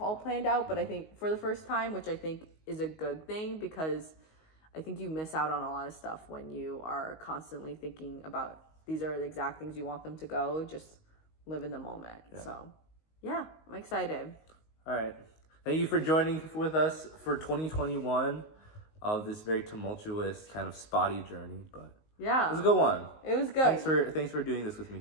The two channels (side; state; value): right; late; 19 ms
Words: planned out, but I think for the first time, which I think is a good thing, because I think you miss out on a lot of stuff when you are constantly thinking about these are the exact things you want them to go. Just live in the moment. So yeah, I'm excited. All right. Thank you for joining with us for 2021 of this very tumultuous kind of spotty journey, but it was a good one. It was good. Thanks for doing this with me,